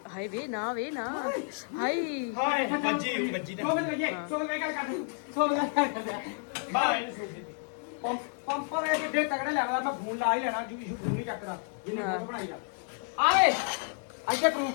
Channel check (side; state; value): right; silent; 57 dB below the other